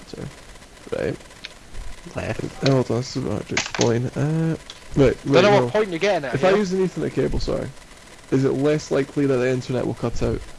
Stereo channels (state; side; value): identical; both; correlation 1.00